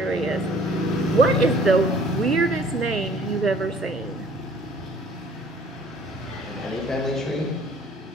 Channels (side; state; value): both; normal; correlation 0.54